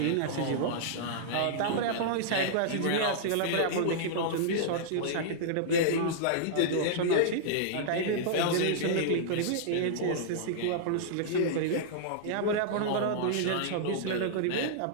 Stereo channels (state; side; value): different; both; correlation -0.02